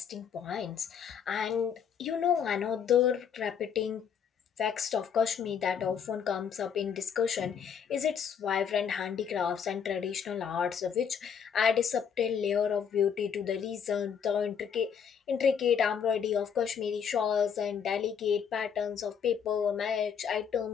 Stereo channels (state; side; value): quieter; right; 7.4 dB